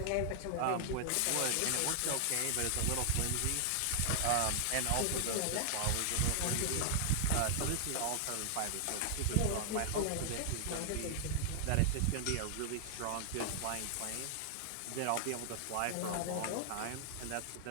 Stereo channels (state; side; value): different; both; correlation 0.00